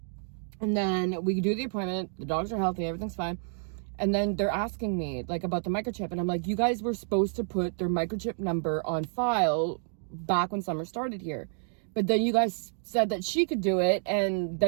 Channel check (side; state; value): left; silent; 57 dB below the other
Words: and then we do the appointment. The dogs are healthy. Everything's fine. And then they're asking me like about the microchip. And I'm like, you guys were supposed to put their microchip number on file back when Summer started here. But then you guys said that she could do it and